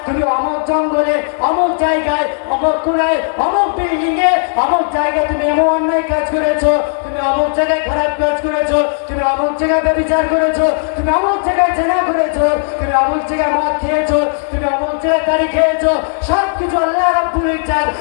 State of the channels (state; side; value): silent; right; digital silence